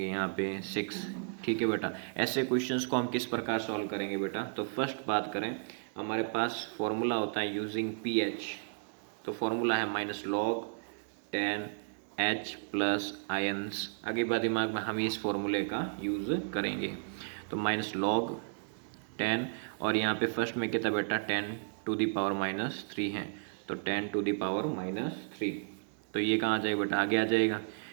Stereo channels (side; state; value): left; silent; 55 dB below the other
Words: यहाँ पे 6, ठीक है बेटा। ऐसे क्वेश्चंस को हम किस प्रकार सॉल्व करेंगे बेटा, तो फर्स्ट बात करें, हमारे पास फॉर्मूला होता है यूजिंग pH, तो फॉर्मूला है -log 10 H प्लस आयंस। आगे बात दिमाग में हम इस फॉर्मूले का यूज़ करेंगे, तो -log 10 और यहाँ पे फर्स्ट में कितना बेटा 10⁻³ है, तो 10⁻³ तो ये कहाँ आ जाएगा बेटा आगे आ जाएगा